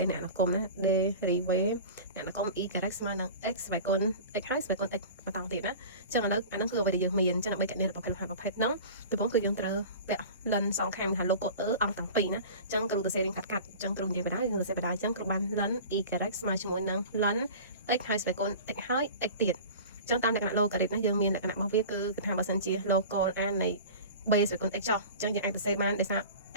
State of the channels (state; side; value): inverted; both; correlation -0.37